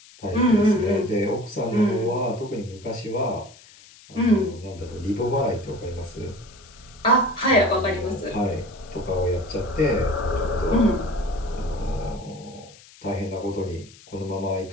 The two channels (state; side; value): noise; left; hiss, 23 dB below the sound